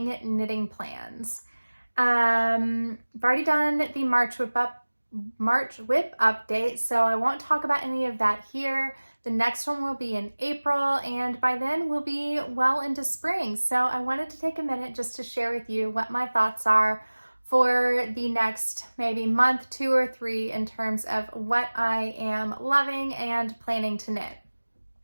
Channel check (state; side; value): inverted; both; correlation -1.00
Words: knitting plans. I've already done the March whip update, so I won't talk about any of that here. The next one will be in April, and by then we'll be well into spring. So I wanted to take a minute just to share with you what my thoughts are for the next maybe month, 2 or 3 in terms of what I am loving and planning to knit.